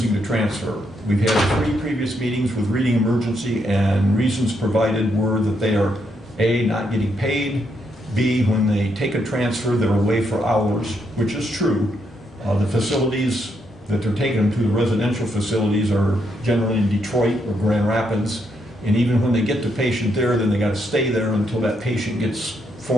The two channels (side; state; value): both; normal; correlation 0.77